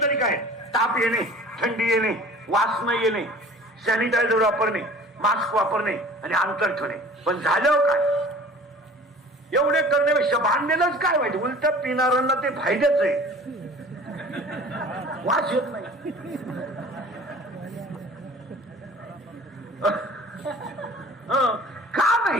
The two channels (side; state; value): both; normal; correlation 0.45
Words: तरी काय, ताप येणे, थंडी येणे, वास न येणे, सॅनिटायझर वापरणे, मास्क वापरणे आणि अंतर ठेवणे. पण झालं काय, एवढे करण्यापेक्षा बांधलेलंच काय वाईट. उलट पिणाऱ्यांना ते फायद्याच आहे, वास येत नाही. का